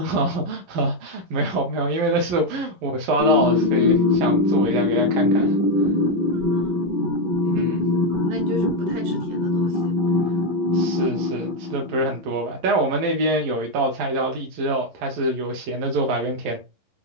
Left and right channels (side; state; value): left; late; 11 ms